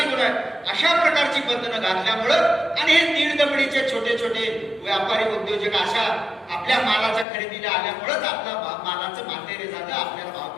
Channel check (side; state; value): right; drops out; at 7.2 s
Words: गुन्हा आहे. अशा प्रकारची बंधनं घातल्यामुळं आणि हे दीड दबडीचे छोटे छोटे व्यापारी उद्योजक अशा आपल्या मालाच्या खरेदीला आल्यामुळंच आपल्या मालाचं मातेरे झालं, आपल्याला भाव